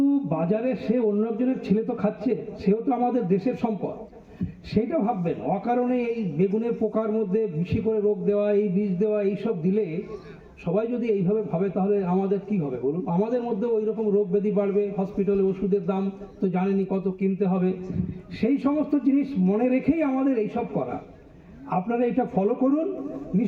বাজারে সে অন্য একজনের ছেলে তো খাচ্ছে, সেও তো আমাদের দেশের সম্পদ। সেইটা ভাববেন। অকারণে এই বেগুনের পোকার মধ্যে বেশি করে রোগ দেওয়া, এই বিষ দেওয়া, এইসব দিলে সবাই যদি এইভাবে ভাবে তাহলে আমাদের কি হবে বলুন? আমাদের মধ্যে ওই রকম রোগ ব্যাধি বাড়বে, হসপিটালে ওষুধের দাম তো জানেনই কত কিনতে হবে। সেই সমস্ত জিনিস মনে রেখেই আমাদের এইসব করা। আপনারা এটা ফলো করুন,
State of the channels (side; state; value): both; identical; correlation 1.00